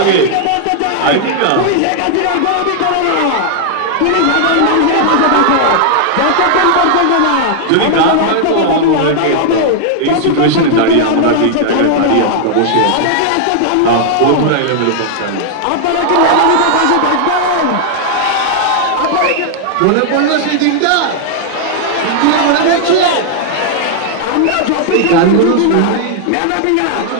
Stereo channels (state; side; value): different; both; correlation 0.00